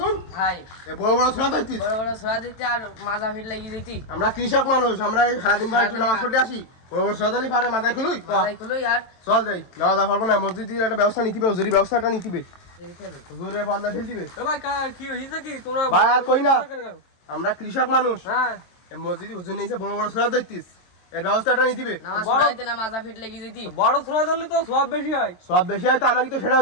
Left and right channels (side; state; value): right; late; 23 ms